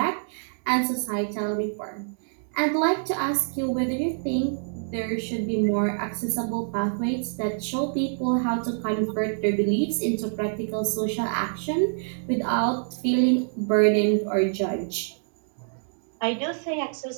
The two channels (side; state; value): left; silent; digital silence